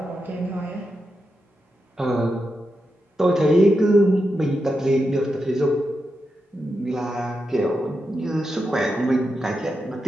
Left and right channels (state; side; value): normal; both; correlation 0.87